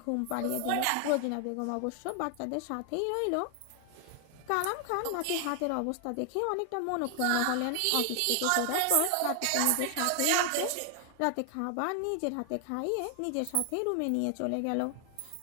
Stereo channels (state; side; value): different; both; correlation 0.00